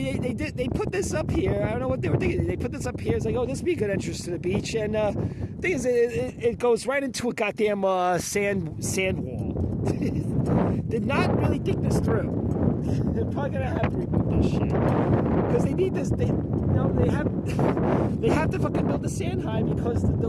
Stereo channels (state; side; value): identical; both; correlation 1.00